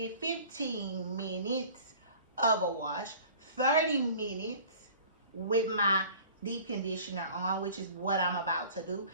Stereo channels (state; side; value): inverted; both; correlation -0.46